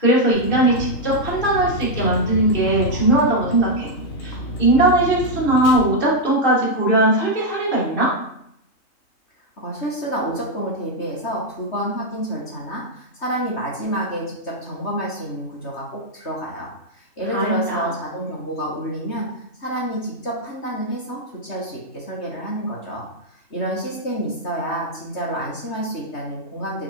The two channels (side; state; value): right; late; 3.2 ms